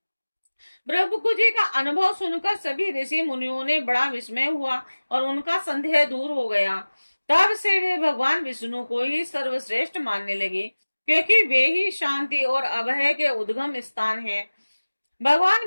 भृगु जी का अनुभव सुनकर सभी ऋषि मुनियों ने बड़ा विस्मय हुआ और उनका संदेह दूर हो गया। तब से वे भगवान विष्णु को ही सर्वश्रेष्ठ मानने लगे, क्योंकि वे ही शांति और अभय के उद्गम स्थान हैं। भगवान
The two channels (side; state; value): both; inverted; correlation -1.00